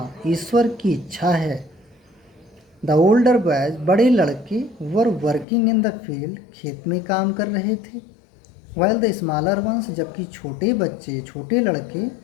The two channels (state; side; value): drops out; right; at 5.5 s